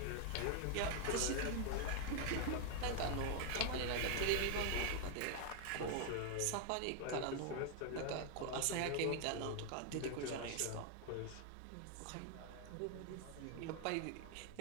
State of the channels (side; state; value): both; different; correlation 0.00